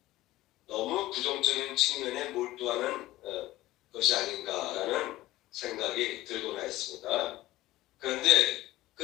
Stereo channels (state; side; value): quieter; right; 16.8 dB